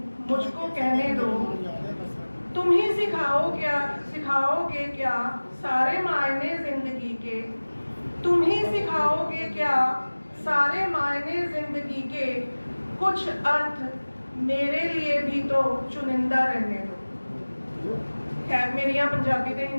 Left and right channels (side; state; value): both; inverted; correlation -1.00